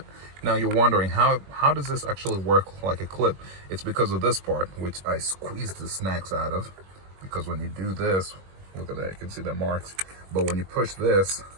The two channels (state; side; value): late; left; 21 ms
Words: now you're wondering, how does this actually work like a clip? It's because of this part, which I squeezed the snacks out of. Because when you do this, look at that, you can see the marks. But when you push this,